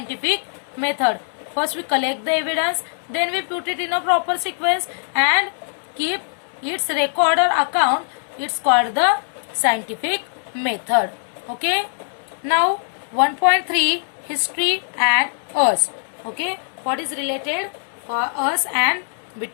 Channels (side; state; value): right; silent; digital silence